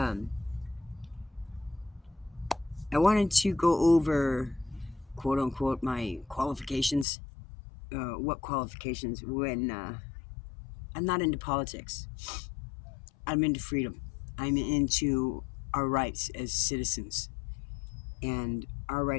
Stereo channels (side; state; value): right; drops out; at 7.1 s